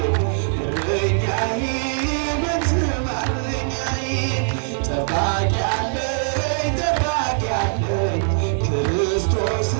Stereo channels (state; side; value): silent; left; digital silence